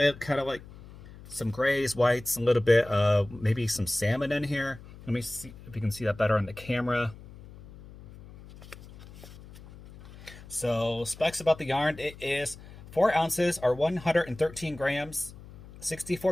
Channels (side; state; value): left; noise; hum, 18 dB below the sound